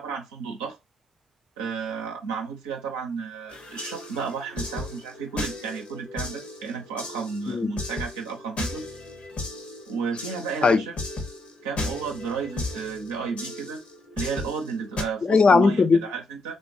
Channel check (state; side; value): normal; both; correlation 0.74